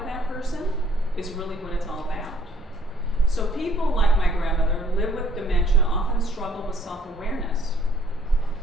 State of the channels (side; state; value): both; normal; correlation 0.61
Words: that person is really what it's all about. So people like my grandmother live with dementia, often struggle with self-awareness,